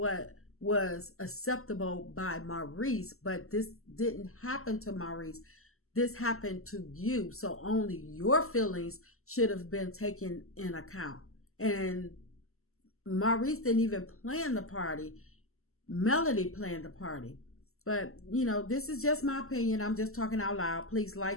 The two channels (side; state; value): right; late; 0.63 ms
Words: was acceptable by Maurice, but this didn't happen to Maurice. This happened to you. So only your feelings should have been taken in account. And Maurice didn't even plan the party. Melody planned the party. But, this is just my opinion. I'm just talking out loud. Please